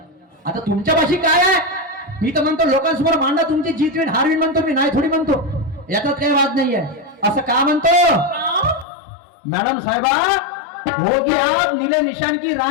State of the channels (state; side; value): drops out; right; at 8.8 s